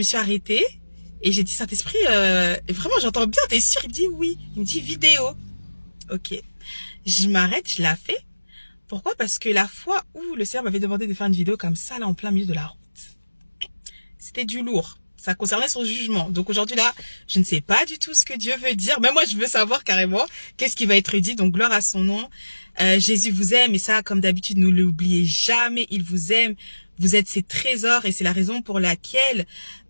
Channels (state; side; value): inverted; both; correlation -1.00